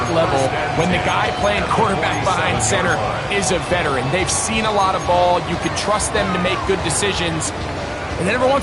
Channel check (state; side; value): identical; both; correlation 1.00